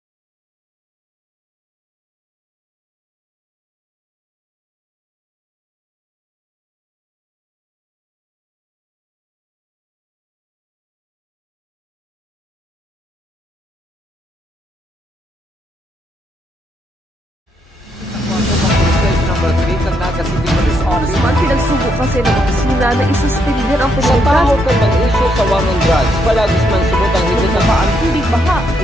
Pinagsubo kasi ng opisina na isuspendir ang Sa Pilipinas tao kung mag-issue sa war on drugs, palagis man subot ang higit na paan. hindi baha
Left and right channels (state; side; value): normal; both; correlation 0.76